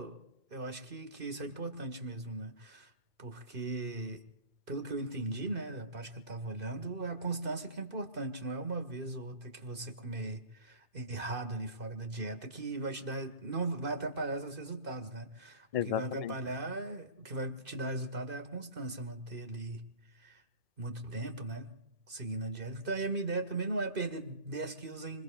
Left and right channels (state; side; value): late; left; 2.5 ms